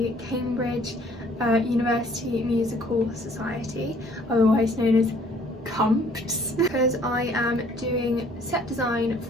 Cambridge University Musical Society, otherwise known as CUMPS, because I am doing set design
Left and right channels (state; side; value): normal; both; correlation 0.59